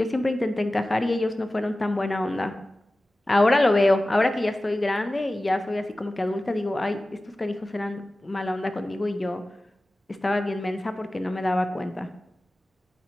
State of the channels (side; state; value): both; normal; correlation 0.96